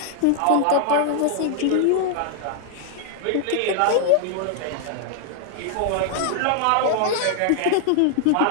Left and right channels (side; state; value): both; different; correlation 0.00